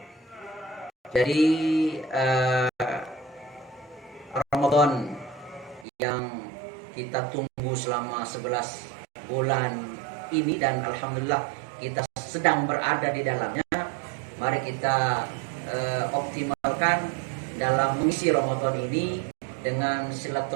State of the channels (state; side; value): drops out; left; at 5.9 s